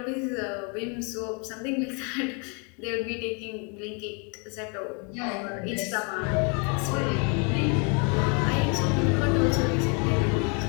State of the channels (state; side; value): quieter; right; 35.2 dB